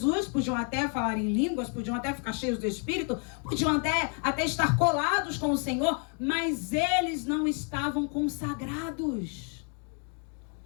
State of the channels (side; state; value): right; quieter; 39.7 dB